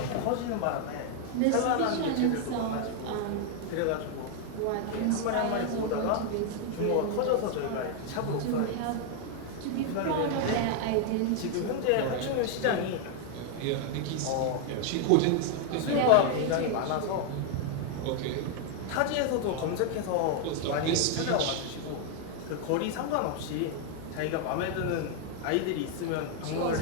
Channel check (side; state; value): both; different; correlation 0.00